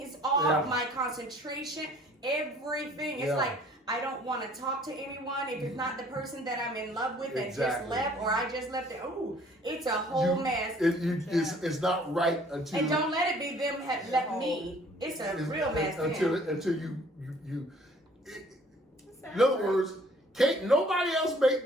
off. My concentration, everything. It's like, I don't want to talk to anyone if it's not the person that I'm in love with that just left or I just left it. Ooh, it's a whole mess. It's not right until. And don't let it be them have left me. It's a real mess. Until you. In other words, can't nobody else make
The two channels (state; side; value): normal; both; correlation 0.56